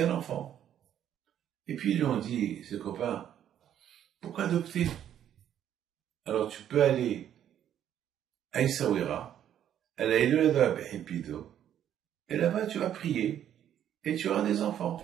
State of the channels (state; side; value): quieter; left; 10.4 dB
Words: un enfant. Et puis ils lui ont dit, ses copains, pourquoi adopter? Alors tu peux aller à Essaouira, à la Elohada Behipido, et là-bas tu vas prier, et tu auras des enfants.